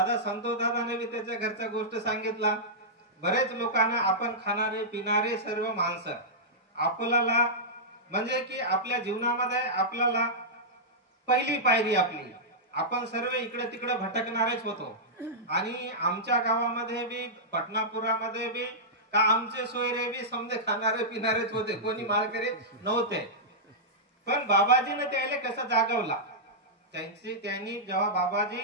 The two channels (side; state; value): both; normal; correlation -0.12